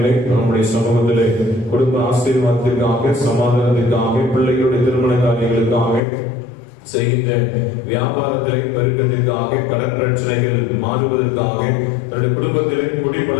நம்முடைய சமூகத்திலே குடும்ப ஆசீர்வாதத்திற்காக, சமாதானத்திற்காக, பிள்ளைகளுடைய திருமண காரியங்களுக்காக, செய்கின்ற வியாபாரத்திலே பெருக்கத்திற்காக, கடன் பிரச்சனைகள் மாறுவதற்காக, தன்னுடைய குடும்பத்திலே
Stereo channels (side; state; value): right; drops out; at 6.0 s